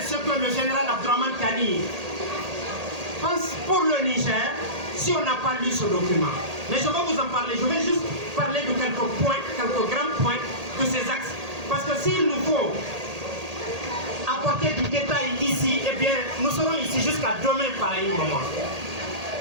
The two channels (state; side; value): late; left; 1.8 ms